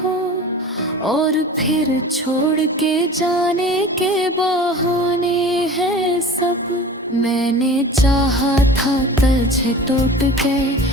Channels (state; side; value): normal; both; correlation 0.39